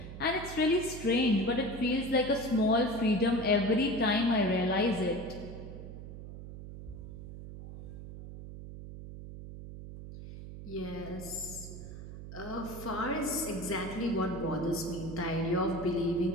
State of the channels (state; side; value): noise; right; hum, 11 dB below the sound